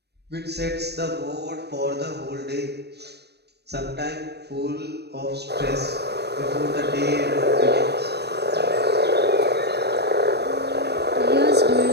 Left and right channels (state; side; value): late; left; 0.48 ms